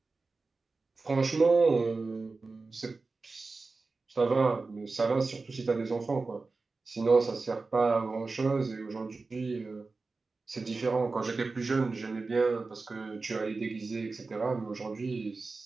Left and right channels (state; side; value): quieter; left; 3.9 dB